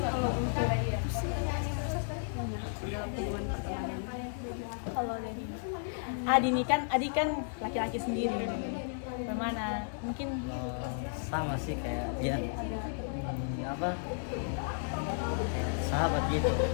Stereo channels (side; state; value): right; silent; digital silence